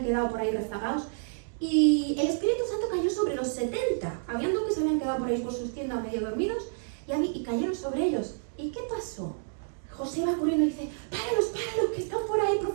quedado por ahí rezagados, y el Espíritu Santo cayó sobre los 70. Habían dos que se habían quedado por ahí por sus tiendas medio dormidos y cayeron sobre ellos. ¿Y qué pasó? José va corriendo y dice, páralos, que están por ahí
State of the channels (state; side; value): silent; left; digital silence